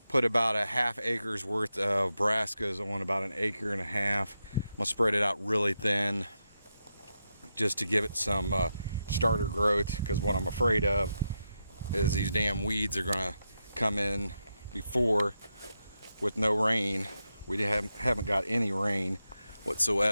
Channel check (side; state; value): both; inverted; correlation -0.86